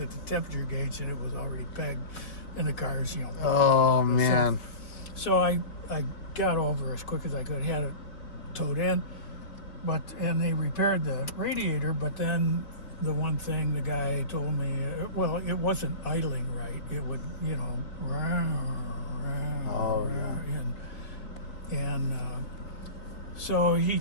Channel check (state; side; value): late; right; 4.0 ms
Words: at the temperature gauge, and it was already pegged, and the car's, Oh, man. So I got over as quick as I could, had it towed in, and they repaired the radiator, but then the one thing the guy told me, it wasn't idling right. It would, and so